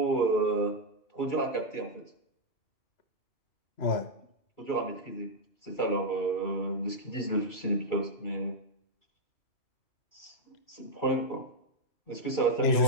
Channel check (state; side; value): late; right; 2.3 ms